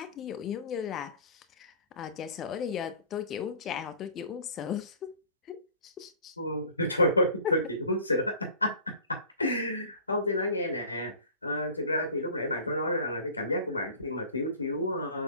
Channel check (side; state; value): both; inverted; correlation -0.45